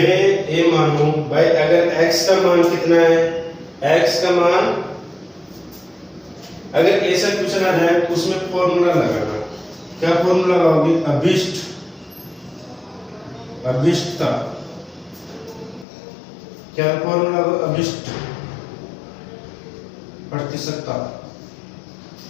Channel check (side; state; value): right; drops out; at 15.9 s